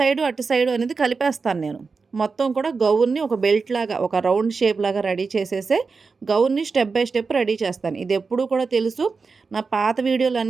అటు సైడు అనేది కలిపేస్తాను నేను. మొత్తం కూడా గౌన్ని ఒక బెల్ట్ లాగా ఒక రౌండ్ షేప్ లాగా రెడీ చేసేసే గౌన్ని స్టెప్ బై స్టెప్ రెడీ చేస్తాను. ఇది ఎప్పుడూ కూడా తెలుసు, నా పాత వీడియోలు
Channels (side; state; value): left; quieter; 4.7 dB